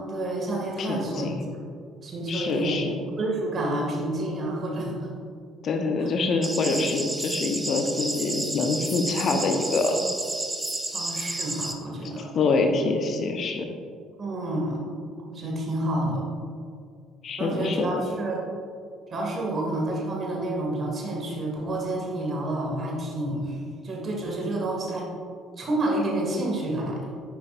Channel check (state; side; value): normal; both; correlation 0.65